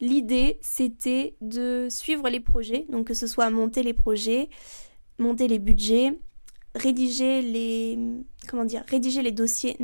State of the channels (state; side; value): inverted; both; correlation -1.00